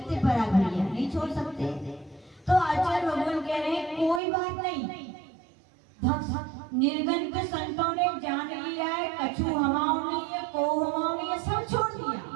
पराग भैया नहीं छोड़ सकते। तो आचार्य भगवान कह रहे हैं कोई बात नहीं, निर्गन के संतों ने जान लिया है, कछु हमाओं नहीं है, को हमाओं नहीं है, सब छोड़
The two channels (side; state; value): left; drops out; at 4.2 s